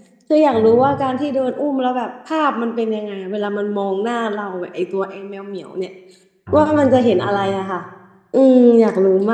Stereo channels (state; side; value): identical; both; correlation 1.00